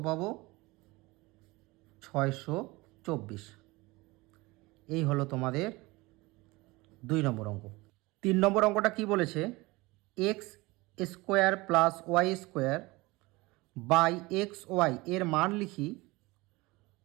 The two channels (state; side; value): quieter; left; 22.5 dB